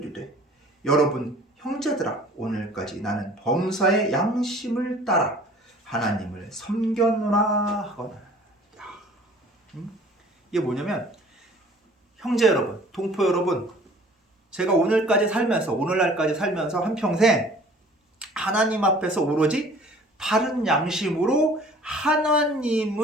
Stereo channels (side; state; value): both; normal; correlation 0.50